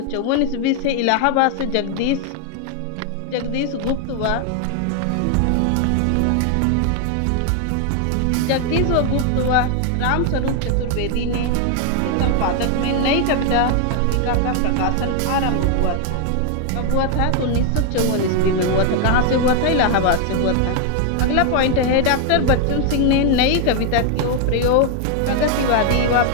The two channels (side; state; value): both; different; correlation 0.00